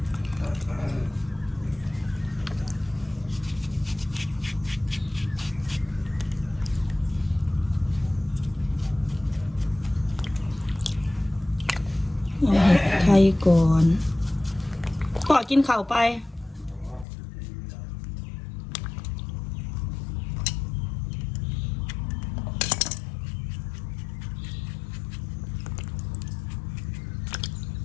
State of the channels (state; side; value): drops out; right; at 17.1 s